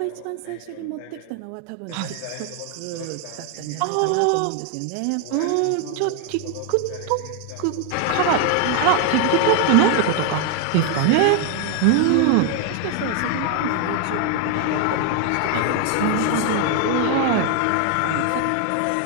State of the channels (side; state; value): both; different; correlation 0.01